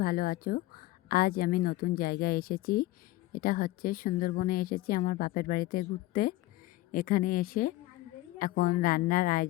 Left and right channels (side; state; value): right; quieter; 17.5 dB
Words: ভালো আছো। আজ আমি নতুন জায়গায় এসেছি। এটা হচ্ছে সুন্দরবনে এসেছি আমার বাপের বাড়িতে ঘুরতে। এখানে এসে এখন রান্নার